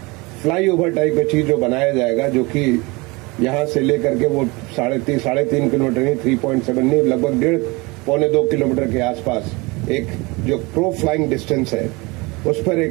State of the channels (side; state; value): left; quieter; 25.2 dB